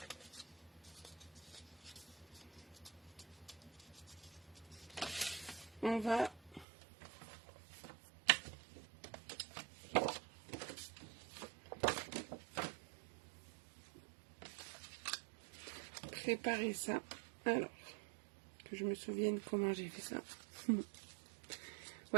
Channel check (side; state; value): left; drops out; at 6.7 s